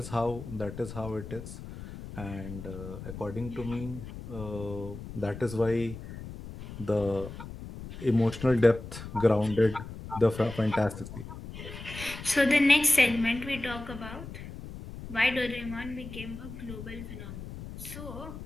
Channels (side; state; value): left; noise; rumble, 11 dB below the sound